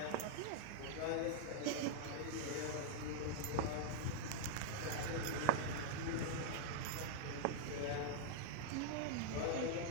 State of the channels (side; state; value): both; different; correlation -0.01